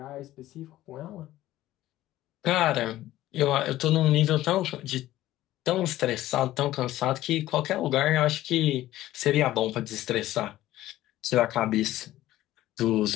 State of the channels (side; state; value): right; quieter; 15.0 dB